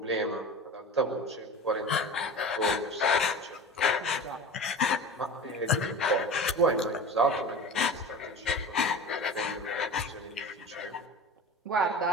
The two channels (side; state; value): both; normal; correlation 0.33